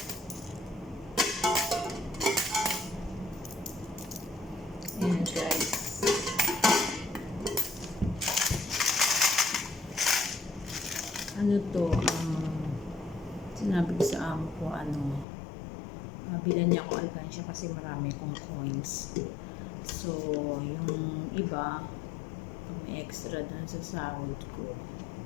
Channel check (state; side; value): drops out; right; at 15.2 s